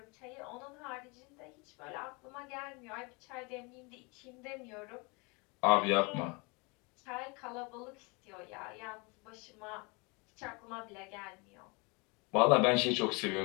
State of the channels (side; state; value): right; quieter; 29.3 dB